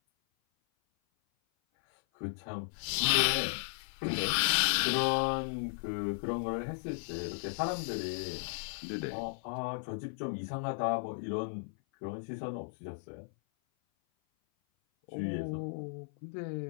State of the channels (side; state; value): right; silent; 54 dB below the other